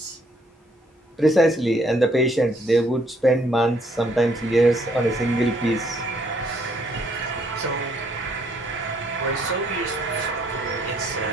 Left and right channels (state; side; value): normal; both; correlation 0.67